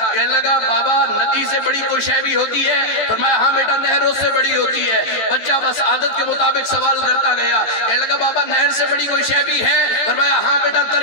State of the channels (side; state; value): right; late; 14 ms